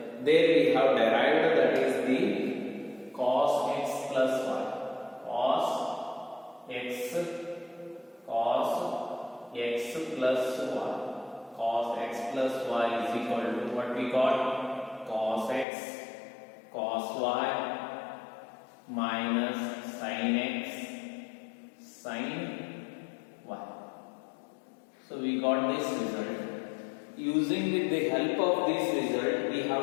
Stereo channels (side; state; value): right; drops out; at 15.7 s